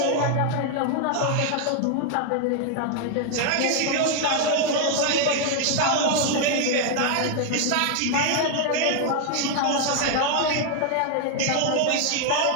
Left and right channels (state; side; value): different; both; correlation 0.00